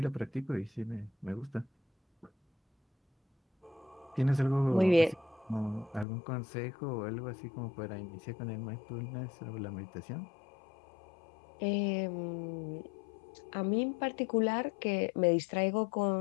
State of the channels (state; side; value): drops out; right; at 6.1 s